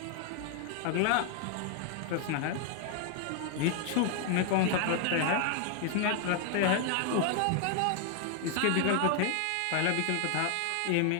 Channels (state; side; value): different; both; correlation 0.00